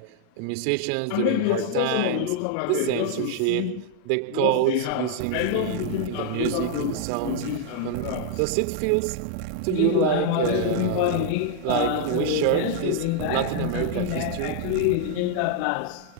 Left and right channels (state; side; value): different; both; correlation 0.00